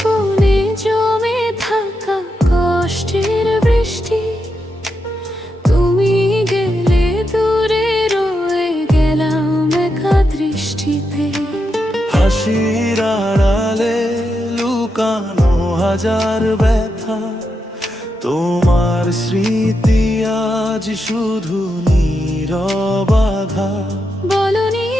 কোণে জমে থাকা কষ্টের বৃষ্টি, তুমি গেলে দূরে রয়ে গেলাম একা দৃষ্টিতে। হাসির আড়ালে লুকানো হাজার ব্যথা, তোমার স্মৃতি আজ শুধু নীরব আঘাত। বলনি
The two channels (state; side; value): normal; both; correlation 0.85